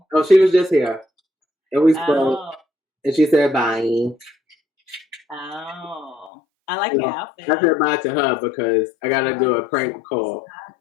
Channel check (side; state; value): right; drops out; at 6.3 s